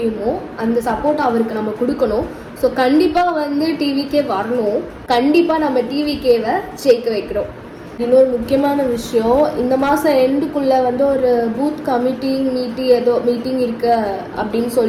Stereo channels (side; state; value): both; identical; correlation 1.00